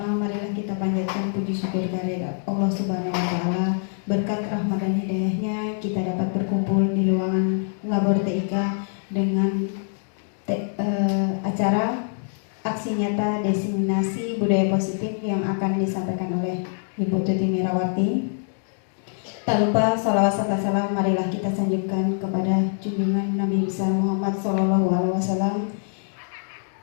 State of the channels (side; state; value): right; silent; digital silence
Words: marilah kita panjatkan puji syukur kehadirat Allah Subhanahu wa taala. Berkat rahmat dan hidayahnya kita dapat berkumpul di ruangan Labor TIK dengan acara aksi nyata diseminasi budaya positif yang akan disampaikan oleh Ibu Tuti Mirawati. Tak lupa salawat serta salam marilah kita sanjungkan kepada junjungan Nabi besar Muhammad SAW